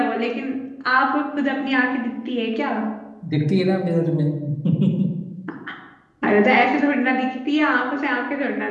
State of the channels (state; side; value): identical; both; correlation 1.00